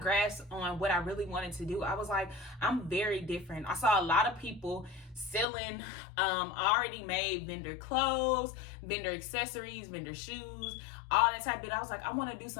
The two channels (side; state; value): right; drops out; at 5.5 s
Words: grasp on what I really wanted to do, I was like, I'm very different. I saw a lot of people selling already made vendor clothes, vendor accessories, vendor shoes, all that type of thing. I was like, I want to do